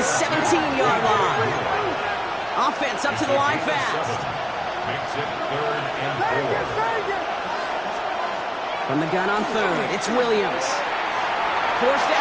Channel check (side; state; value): both; identical; correlation 1.00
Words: 17-yard line. Offense up to the line fast. Makes it 3rd and 4. From the gun on 3rd, it's Williams. Forced